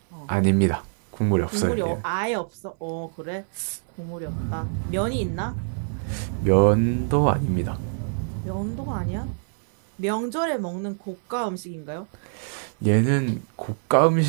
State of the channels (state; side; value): silent; left; digital silence